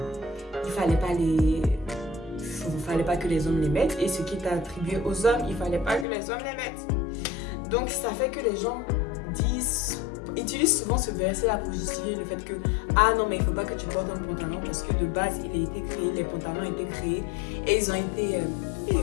il fallait pas que les hommes les mettent, et ce qui est attribué aux hommes, il fallait pas que les hommes les mettent. Donc ça fait que les gens utilisent souvent ce verset-là pour justifier le fait que ah non, mais il faut pas que tu portes un pantalon parce que de base il a été créé, les pantalons ont été créés et ils ont été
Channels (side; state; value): right; drops out; at 6.1 s